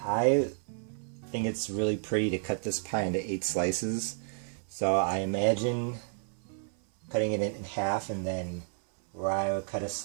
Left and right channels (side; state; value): left; silent; 57 dB below the other